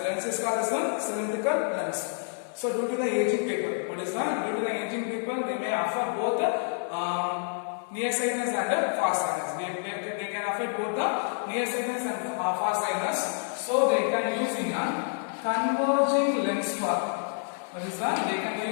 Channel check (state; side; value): silent; right; 59 dB below the other